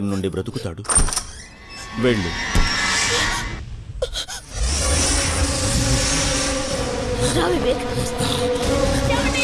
నుండి బ్రతుకుతాడు. వెళ్ళు.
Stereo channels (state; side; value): identical; both; correlation 1.00